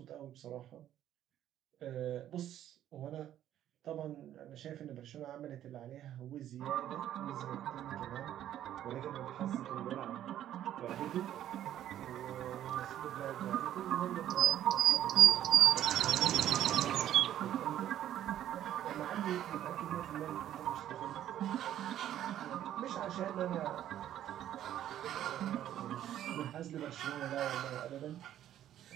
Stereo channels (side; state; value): left; quieter; 11.6 dB